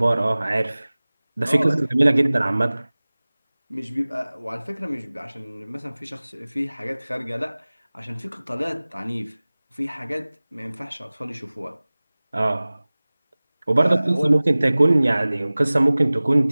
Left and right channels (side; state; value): both; inverted; correlation -0.99